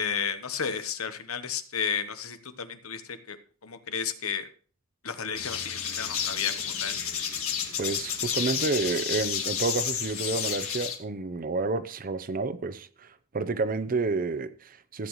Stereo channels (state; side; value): normal; both; correlation 0.03